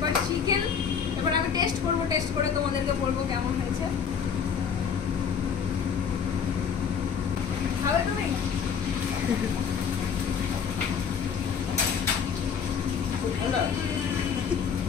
চিকেন। এবার আমি টেস্ট করবো, টেস্ট করে তোমাদেরকে বলবো কেমন হয়েছে। খাবে তুমি?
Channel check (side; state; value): right; quieter; 7.0 dB